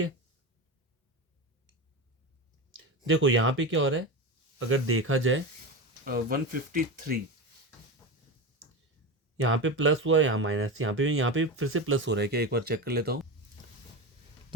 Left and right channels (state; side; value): normal; both; correlation 0.22